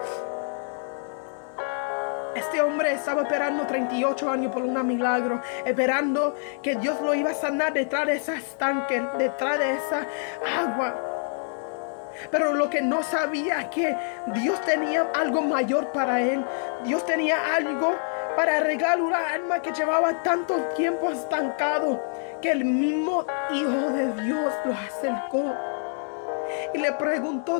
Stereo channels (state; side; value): silent; right; 61 dB below the other